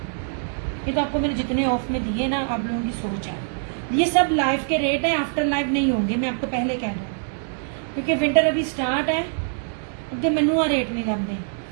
ये तो आपको मैंने जितने ऑफ में दिए ना, आप लोगों की सोच है। ये सब लाइव के रेट है, आफ्टर लाइव नहीं होंगे, मैं आपको पहले कह दूँ, क्योंकि विंटर अभी स्टार्ट है, अगे मैनू रेट नहीं लगते।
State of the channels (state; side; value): silent; left; digital silence